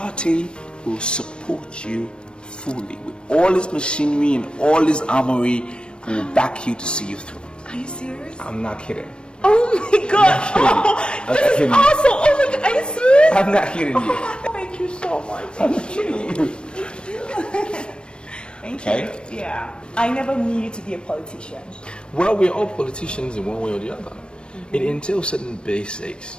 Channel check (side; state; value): right; late; 0.055 ms